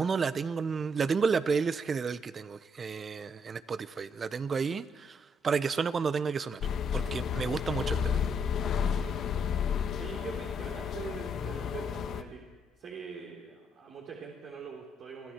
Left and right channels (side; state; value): both; normal; correlation 0.74